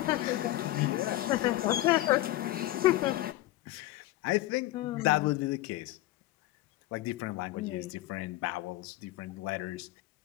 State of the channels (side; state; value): right; quieter; 16.4 dB